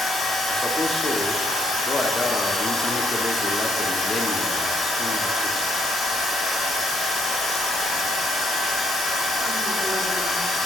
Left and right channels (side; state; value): both; normal; correlation 0.70